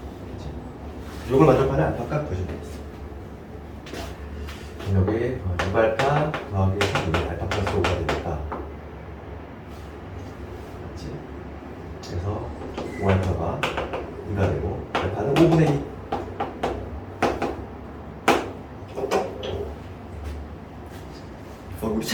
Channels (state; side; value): identical; both; correlation 1.00